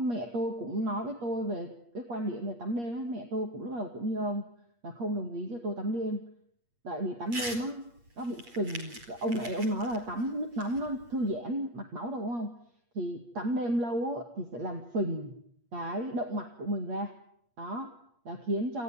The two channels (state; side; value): late; left; 8.5 ms